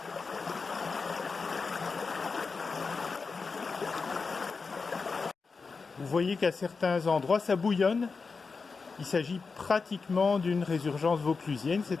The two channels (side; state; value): right; quieter; 4.7 dB